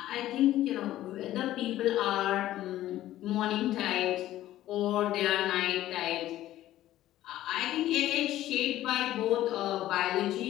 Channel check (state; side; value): quieter; right; 14.0 dB